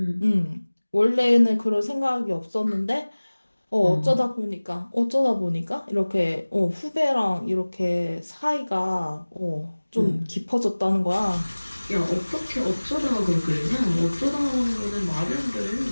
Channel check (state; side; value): inverted; both; correlation -1.00